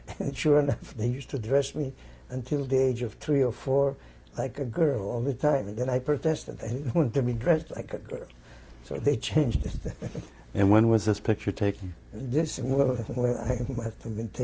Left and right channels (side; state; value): both; identical; correlation 1.00